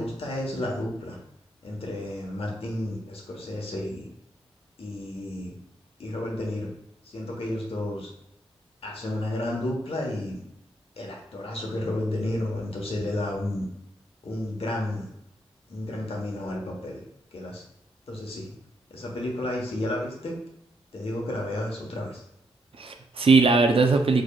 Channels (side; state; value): both; normal; correlation 0.76